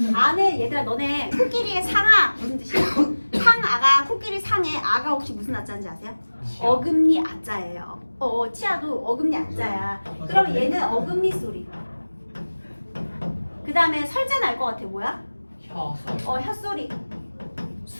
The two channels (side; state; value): both; inverted; correlation -1.00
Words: 아는, 얘들아, 너네 코끼리의 상아 무슨 뜻이야? 상아가, 코끼리 상의 아가 혹시 무슨 아자인지 아세요? 어금니 아자예요. 치아도 어금니 아자야. 그러면 얘는 어금니 소리. 그 다음에 설자는 알 것 같아. 뭐야? 혀소리. 혀소리.